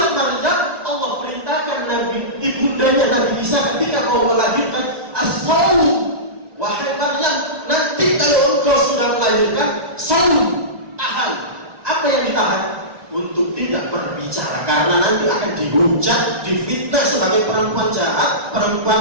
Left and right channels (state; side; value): late; left; 1.2 ms